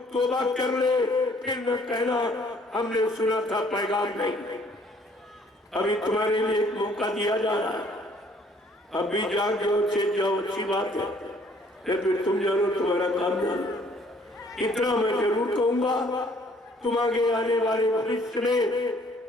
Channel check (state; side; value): normal; both; correlation 0.60